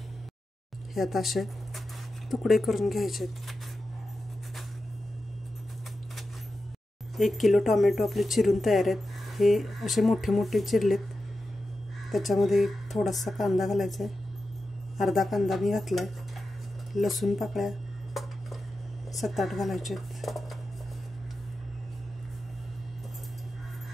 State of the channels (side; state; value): both; normal; correlation 0.91